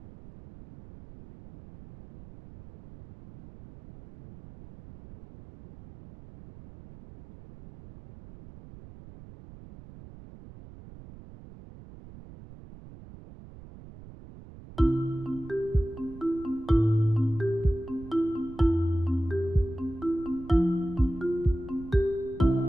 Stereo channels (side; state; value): right; noise; rumble, 18 dB below the sound